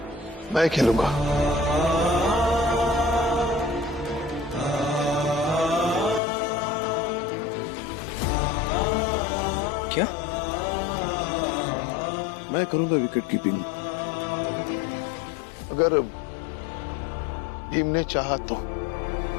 मैं खेलूंगा। क्या? मैं करूंगा विकेट कीपिंग। अगर भीम ने चाहा तो।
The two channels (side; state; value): right; drops out; at 6.2 s